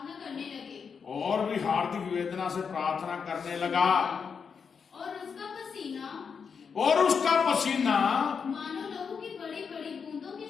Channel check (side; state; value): right; quieter; 6.1 dB